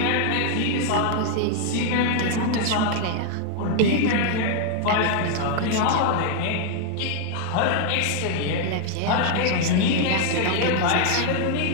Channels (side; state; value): both; different; correlation 0.00